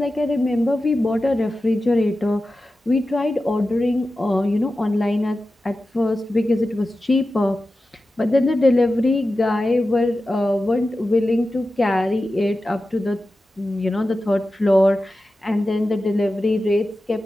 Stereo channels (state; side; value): normal; both; correlation 0.93